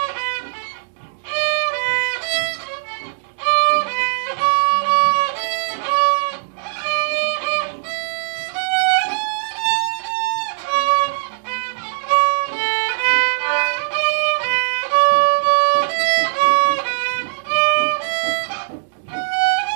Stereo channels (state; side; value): silent; left; digital silence